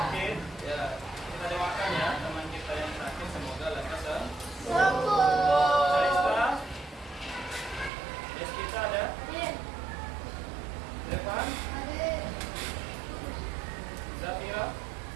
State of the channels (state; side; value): drops out; left; at 7.9 s